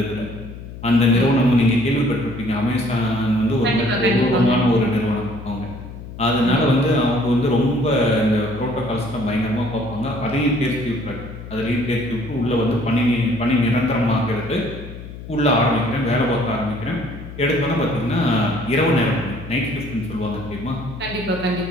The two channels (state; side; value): noise; left; hum, 13 dB below the sound